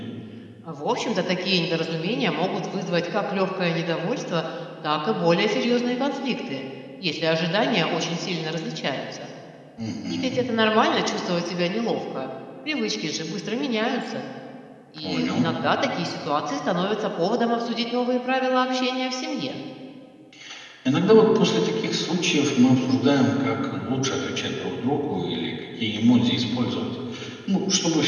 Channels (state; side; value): identical; both; correlation 1.00